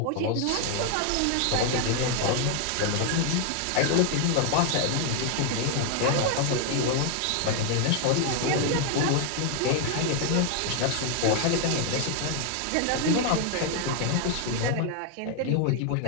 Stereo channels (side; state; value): both; different; correlation 0.00